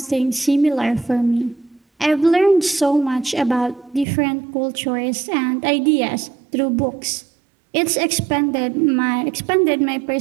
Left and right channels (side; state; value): left; drops out; at 4.0 s